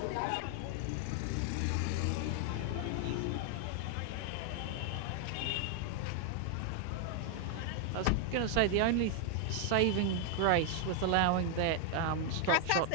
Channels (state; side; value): different; both; correlation 0.00